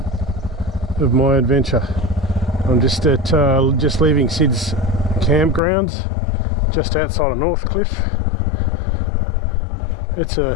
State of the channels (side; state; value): right; drops out; at 5.6 s